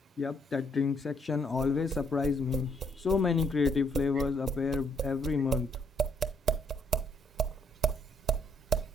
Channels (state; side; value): normal; both; correlation 0.70